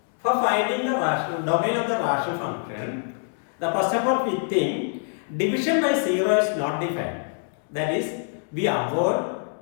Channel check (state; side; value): silent; right; digital silence